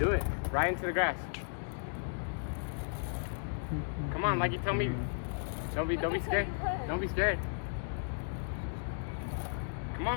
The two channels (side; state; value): right; silent; digital silence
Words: it. Right into the grass. Come on, like you tell me. Don't be scared. Don't be scared. Come